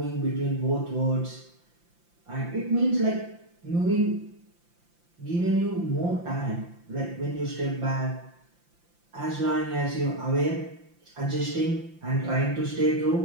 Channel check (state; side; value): late; left; 5.8 ms